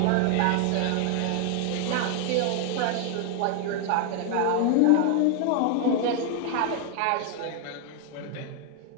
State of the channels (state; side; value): different; both; correlation 0.00